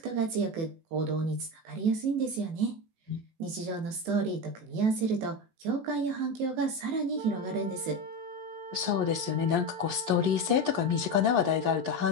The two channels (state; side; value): late; left; 18 ms